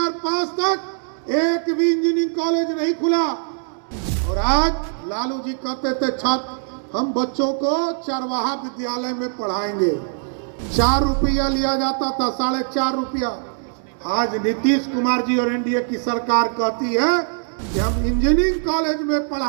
तक एक भी इंजीनियरिंग कॉलेज नहीं खुला। और आज लालू जी कहते थे छात्र हम बच्चों को चरवाहा विद्यालय में पढ़ाएंगे, 4 रुपया लिया जाता था, 4.5 रुपया। आज नीतीश कुमार जी और एनडीए की सरकार कहती है कि हम इंजीनियरिंग कॉलेज में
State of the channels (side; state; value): left; silent; 65 dB below the other